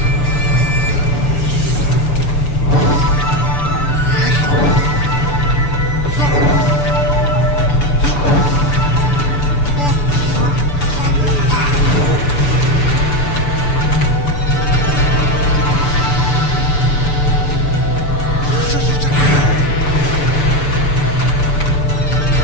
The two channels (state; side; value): late; right; 6.9 ms